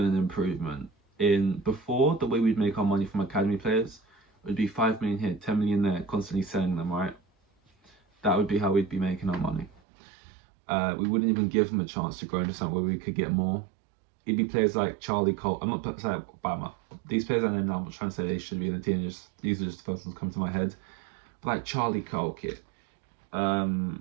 an improvement. In before, the way we'd make our money from academy players would be 5 million here, 10 million there, constantly selling them, right? That would be how we'd be making our money. We wouldn't even give them a chance to grow into something where we could get more. It'd be players like Charlie Cole. I'm not saying these players I know now, I'm not trying to say they should be in the team, these are just the first ones come to my head. But like Charlie Cole,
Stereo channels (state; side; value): drops out; left; at 9.8 s